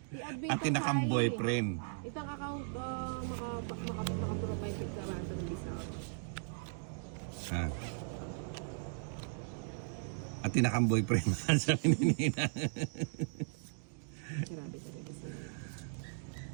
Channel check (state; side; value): silent; left; digital silence